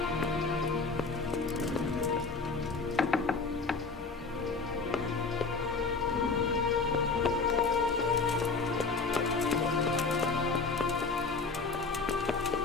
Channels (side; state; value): right; quieter; 4.3 dB